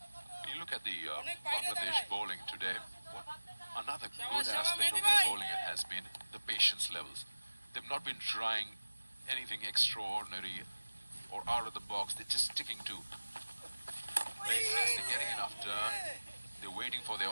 When you look at the Bangladesh bowling today, what another good aspect of their bowling has been the patience levels. They've not been trying anything extraordinary or out of the box. They're just sticking to basics. They're getting enough turn. They're waiting for their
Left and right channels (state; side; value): inverted; both; correlation -1.00